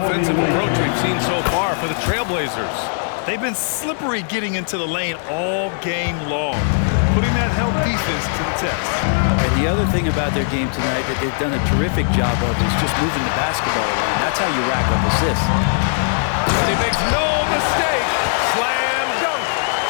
approach we've seen so far for the Trailblazers? They've been slippery getting into the lane all game long, putting that help defense to the test. And the other thing about their game tonight that they've done a terrific job of is just moving the basketball around. That's how you rack up assists. And he makes no mistake. Slam dunk.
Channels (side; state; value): right; silent; digital silence